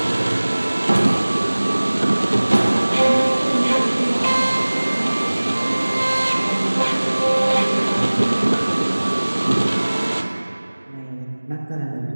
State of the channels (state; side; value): inverted; both; correlation -1.00